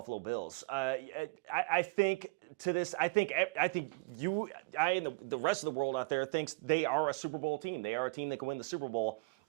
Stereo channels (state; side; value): quieter; left; 29.5 dB